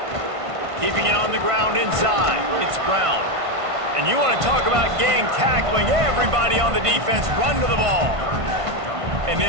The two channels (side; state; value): left; late; 1.5 ms